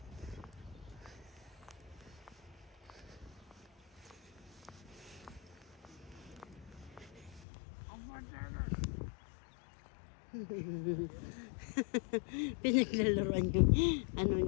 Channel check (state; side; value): drops out; right; at 7.5 s